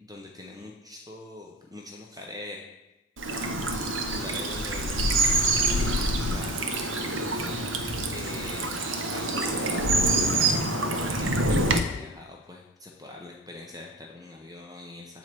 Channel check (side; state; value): both; normal; correlation 0.31